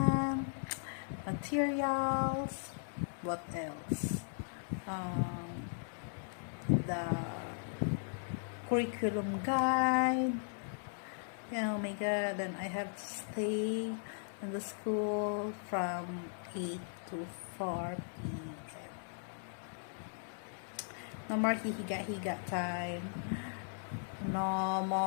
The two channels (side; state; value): right; silent; digital silence